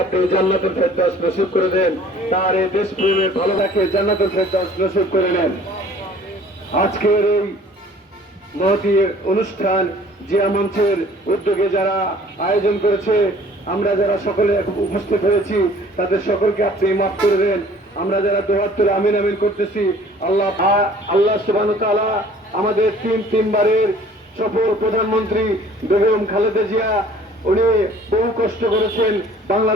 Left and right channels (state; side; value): normal; both; correlation 0.52